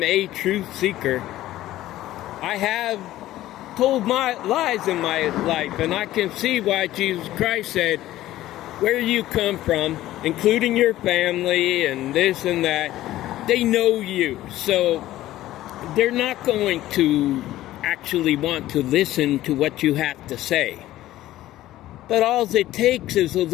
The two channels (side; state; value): right; quieter; 14.8 dB